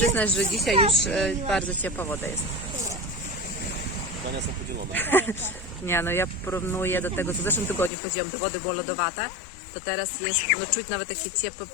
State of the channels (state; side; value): drops out; right; at 7.9 s